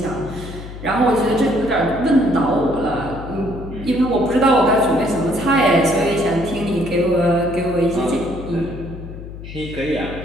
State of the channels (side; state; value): left; noise; hum, 12 dB below the sound